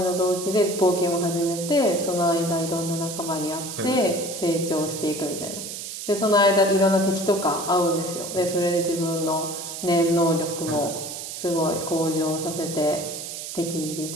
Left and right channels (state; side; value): noise; right; hiss, 8 dB below the sound